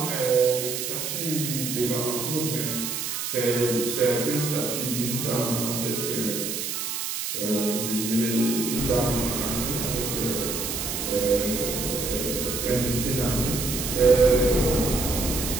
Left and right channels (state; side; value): noise; right; hiss, 3 dB below the sound